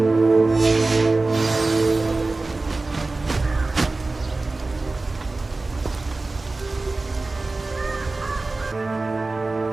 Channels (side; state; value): left; quieter; 3.4 dB